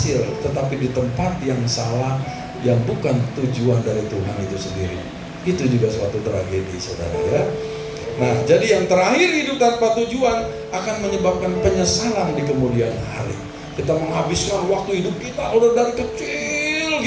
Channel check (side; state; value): both; identical; correlation 1.00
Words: tetapi di tempat yang salah, yang bukan tujuan dari Tuhan itu sendiri. Itu juga suatu tragedi saudara ya. Nah jadi yang terakhir, hidup tanpa tujuan akan menyebabkan penyesalan di kemudian hari. Kita menghabiskan waktu hidup kita udah dari kecil